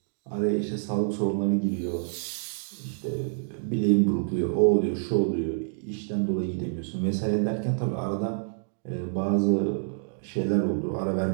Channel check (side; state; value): left; silent; digital silence